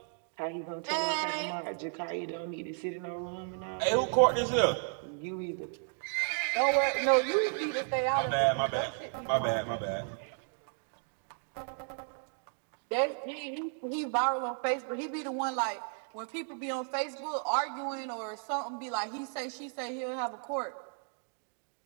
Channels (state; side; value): silent; left; 55 dB below the other